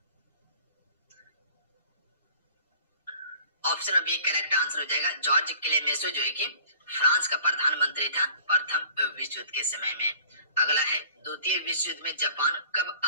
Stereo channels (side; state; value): both; inverted; correlation -0.49